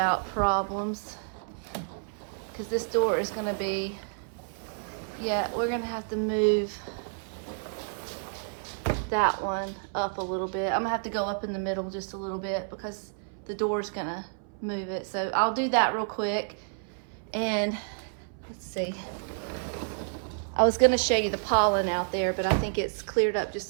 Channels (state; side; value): silent; left; 58 dB below the other